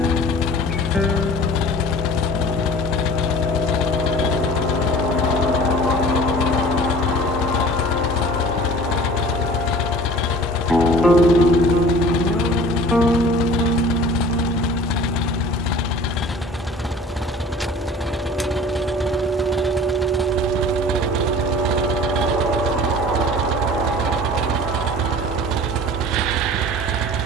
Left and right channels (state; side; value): normal; both; correlation 0.44